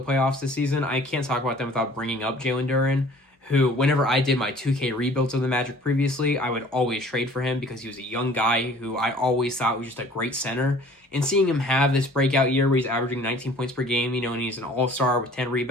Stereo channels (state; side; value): normal; both; correlation 0.51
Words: playoffs this season, I can't talk about them without bringing up Jalen Duren, who, whenever I did my 2K rebuilds of the Magic previously, I would always trade for him because he was a young guy who I always thought was just a great center. And seeing him have this breakout year where he's averaging 19 points per game, and he's an all-star with 10